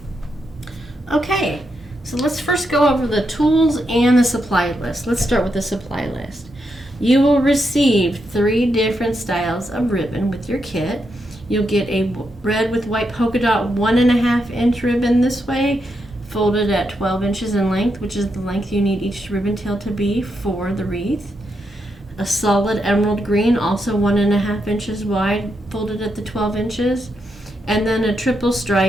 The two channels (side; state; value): both; normal; correlation 0.82